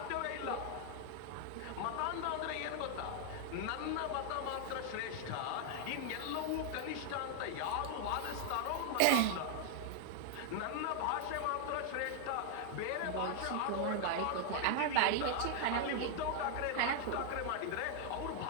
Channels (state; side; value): different; both; correlation 0.00